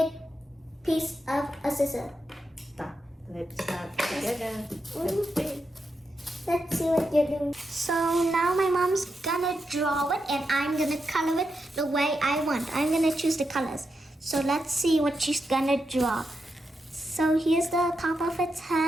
piece of a scissor. Let's start together. Let's see what you're doing. So now my mom's gonna draw it and I'm gonna color it the way I want. I'm gonna choose the colors. So let's see what she's gonna draw. So here's the top of its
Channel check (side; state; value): both; normal; correlation 0.86